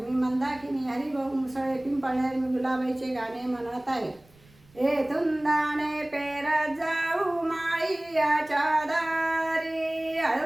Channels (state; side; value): noise; right; rumble, 29 dB below the sound